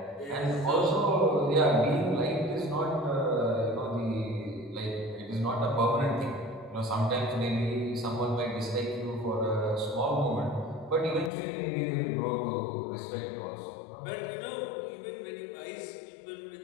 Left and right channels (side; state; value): right; drops out; at 11.3 s